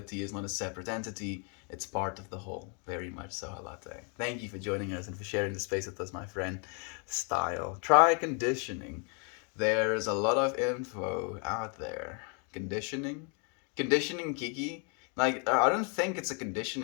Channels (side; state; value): right; quieter; 37.3 dB